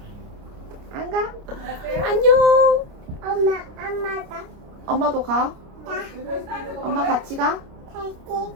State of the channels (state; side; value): late; left; 29 ms